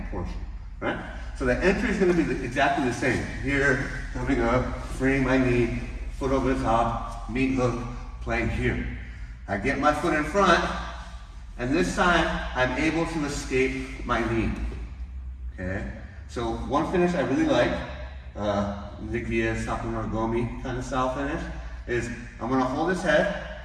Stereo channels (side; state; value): both; identical; correlation 1.00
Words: portion, right? So the entry is gonna be exactly the same. Here, coming up, freeing my knee, foot over the top, meat hook, playing here. I get my foot in front, and this time, I'm able to escape my knee, okay? So one finish I really like, Nikia Sakunogomi kind of style finish, is I'm gonna hold his head